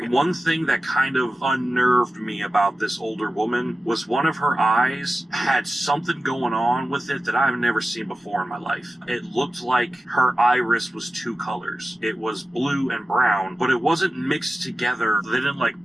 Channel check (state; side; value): normal; both; correlation 0.94